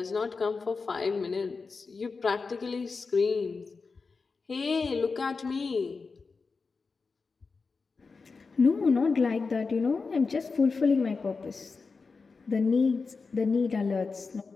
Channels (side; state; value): right; quieter; 4.5 dB